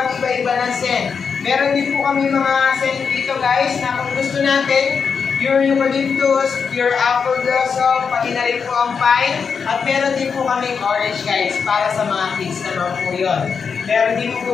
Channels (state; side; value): quieter; right; 5.9 dB